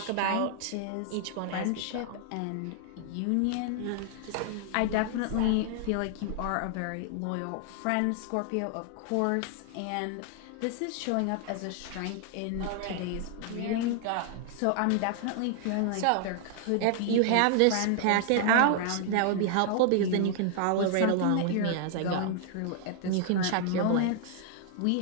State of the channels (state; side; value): different; both; correlation 0.00